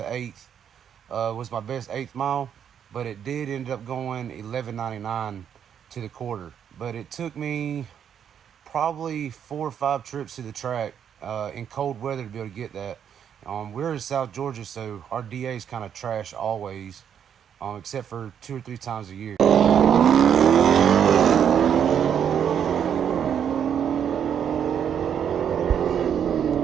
8th. Was my best 8th mile, but it did end up going 1199 to the quarter. But it took me probably 4 or 5 trips to the track in cold weather to be able to get that. We're in South Georgia, so our DA is kind of trash always, except for 2 or 3 times a year.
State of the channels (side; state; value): left; quieter; 8.6 dB